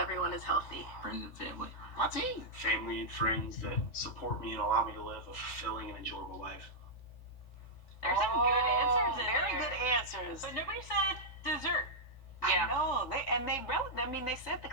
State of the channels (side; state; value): right; late; 3.6 ms